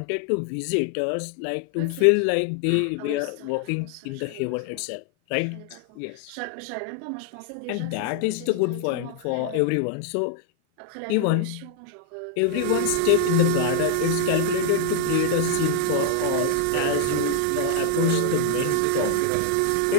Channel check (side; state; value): both; different; correlation 0.00